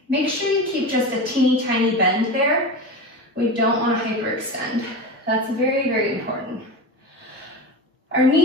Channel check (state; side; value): normal; both; correlation 0.25